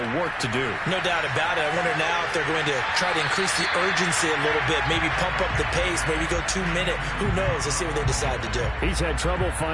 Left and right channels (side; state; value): both; identical; correlation 1.00